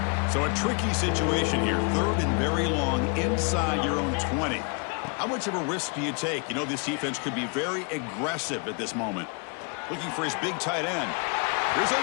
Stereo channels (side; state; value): right; quieter; 36.4 dB